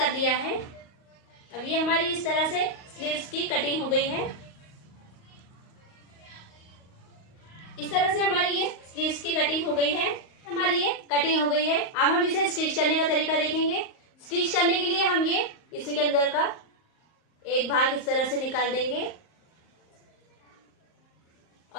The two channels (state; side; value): late; right; 38 ms